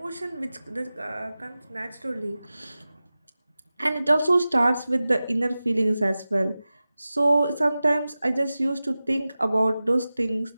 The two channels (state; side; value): inverted; both; correlation -0.96